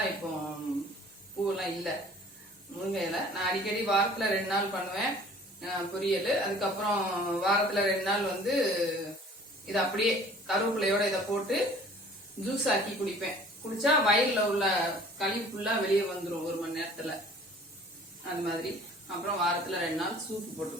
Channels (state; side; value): normal; both; correlation 0.50